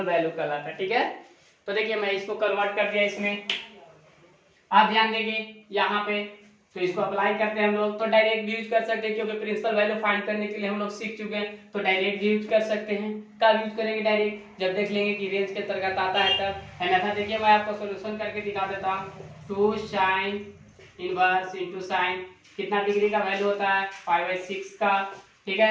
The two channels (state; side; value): identical; both; correlation 1.00